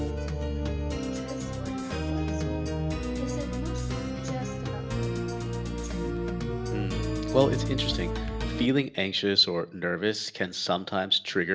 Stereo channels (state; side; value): identical; both; correlation 1.00